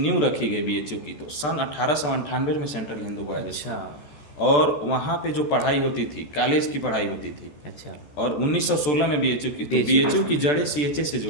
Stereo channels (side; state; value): right; late; 14 ms